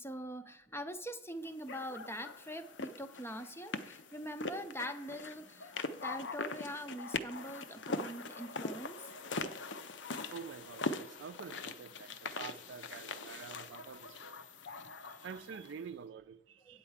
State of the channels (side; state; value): both; normal; correlation 0.20